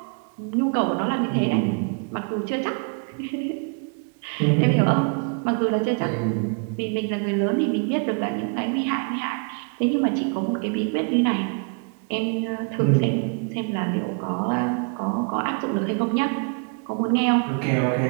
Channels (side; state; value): left; quieter; 39.9 dB